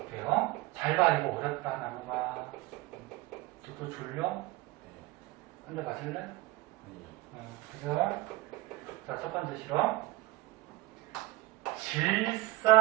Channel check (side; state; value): left; quieter; 18.5 dB